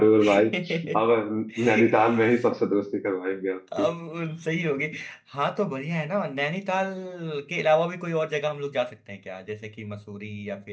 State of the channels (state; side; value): identical; both; correlation 1.00